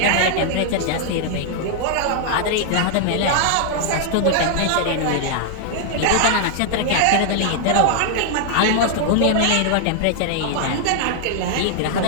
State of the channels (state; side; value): different; both; correlation -0.01